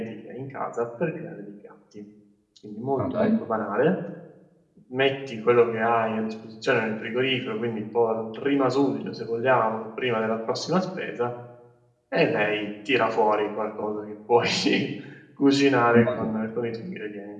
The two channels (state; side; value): identical; both; correlation 1.00